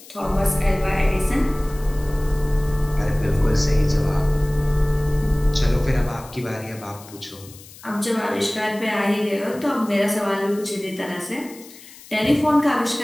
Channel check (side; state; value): left; noise; hiss, 20 dB below the sound